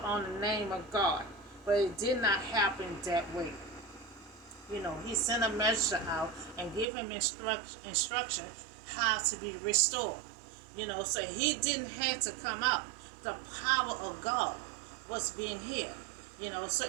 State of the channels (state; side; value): drops out; left; at 6.9 s